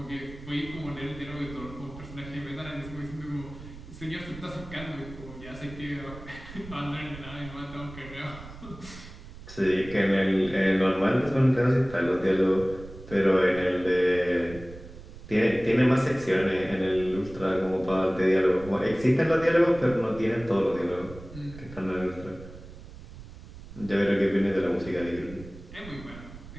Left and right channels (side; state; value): right; noise; rumble, 16 dB below the sound